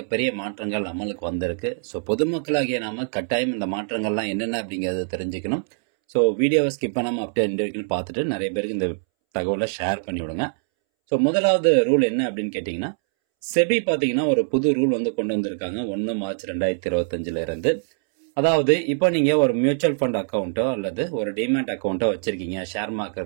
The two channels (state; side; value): silent; left; 63 dB below the other